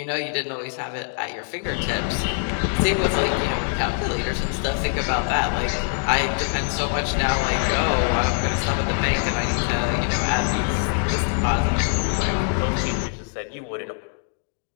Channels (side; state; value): right; silent; 63 dB below the other